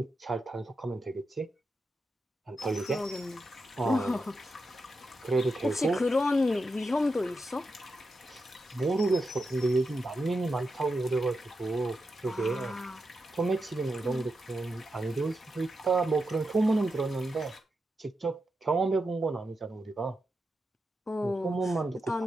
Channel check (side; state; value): both; normal; correlation 0.87